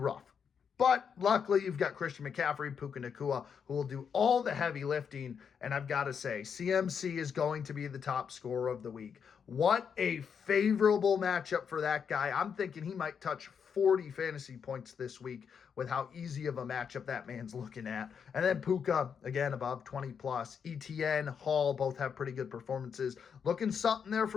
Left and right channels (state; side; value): quieter; right; 6.9 dB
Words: But luckily, you've got Christian McCaffrey, Puka Nacua, who will do all the heavy lifting. And I've got to say, CMC is going to be the top scorer of the week. What a favorable matchup for that guy. I'm thinking he might touch 40 fantasy points this week with how easy of a matchup that man's looking at. And then Puka, again, above 20 plus. ETN, Hall, both have pretty good performances. Looking something there